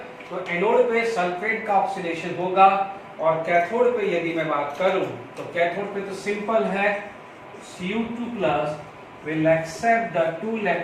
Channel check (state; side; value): identical; both; correlation 1.00